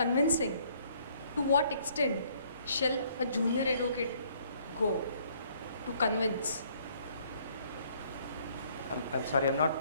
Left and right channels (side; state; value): both; inverted; correlation -0.63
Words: to what extent shall a junior advocate go to convince? I'm sorry, I'm